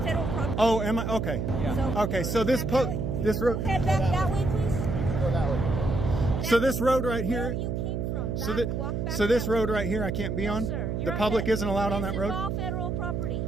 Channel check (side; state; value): right; noise; hum, 2 dB below the sound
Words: federal property. Oh, am I? Okay. So Okay, so this road. head back that way, please. Go that way. So this road right Where here. you came from. So Back, that. walk back So this that way. road right here, I can't be on. No, sir. The You're on public fed- isn't allowed on that road. This is all federal property.